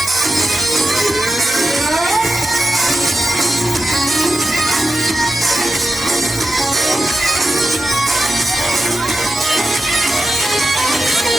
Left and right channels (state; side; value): normal; both; correlation 0.91